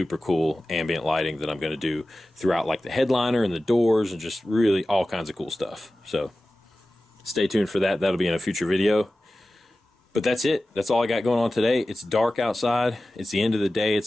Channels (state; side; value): normal; both; correlation 0.96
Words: cool ambient lighting that I'm going to do throughout, like the headliner and the doors, and just really all kinds of cool stuff. So stay tuned for that. That'll be in a future video. But that's it. That's all I got going on today. It's dark outside. It's the end of the day.